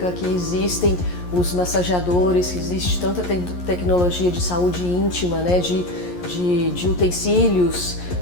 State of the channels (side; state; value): right; late; 11 ms